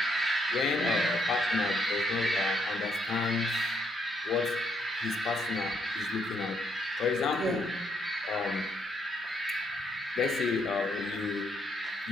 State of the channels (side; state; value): both; normal; correlation 0.73